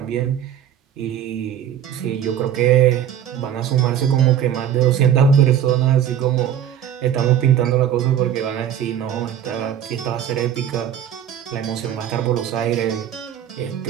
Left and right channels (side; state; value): left; quieter; 9.8 dB